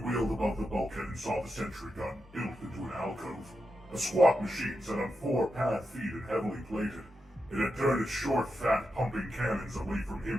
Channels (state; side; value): normal; both; correlation 0.87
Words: above the bulkhead and saw the sentry gun built into an alcove. A squat machine set on 4 pad feet and heavily plated. It had turned its short, fat, pumping cannons away from